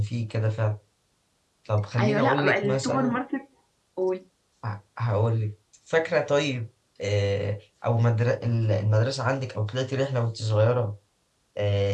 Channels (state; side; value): identical; both; correlation 1.00